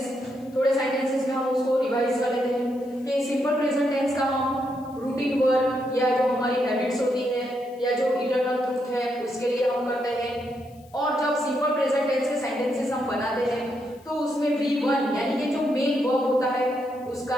थोड़े सेंटेंसेस में हम उसको रिवाइज कर लेते हैं कि सिंपल प्रेजेंट टेंस का हम रूटीन वर्क या जो हमारी हैबिट्स होती है या जो इटर्नल ट्रूथ है उसके लिए हम करते हैं. और जब सिंपल प्रेजेंट टेंस के सेंटेंसेस हम बनाते हैं तो उसमें V1 यानी कि जो मेन वर्ब होता है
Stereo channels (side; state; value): left; noise; hiss, 29 dB below the sound